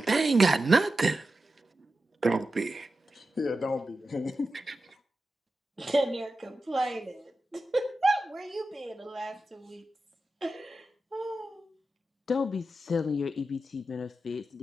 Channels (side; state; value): both; normal; correlation 0.92